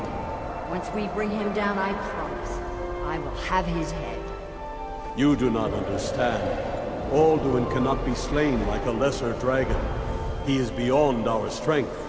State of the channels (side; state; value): both; identical; correlation 1.00